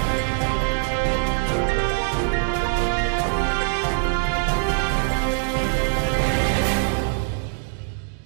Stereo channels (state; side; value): silent; left; digital silence